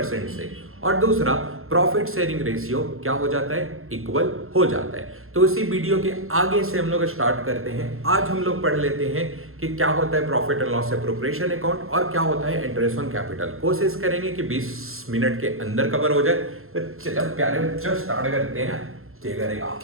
से। और दूसरा, प्रॉफिट शेयरिंग रेशियो क्या हो जाता है? इक्वल हो जाता है। तो इसी वीडियो के आगे से हम लोग स्टार्ट करते हैं। आज हम लोग पढ़ लेते हैं कि क्या होता है profit and loss appropriation account और क्या होता है इंटरेस्ट ऑन कैपिटल। कोशिश करेंगे कि 20 मिनट के अंदर कवर हो जाए। तो चलो प्यारे बच्चों, स्टार्ट करते हैं। क्या करेगा?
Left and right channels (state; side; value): late; left; 0.61 ms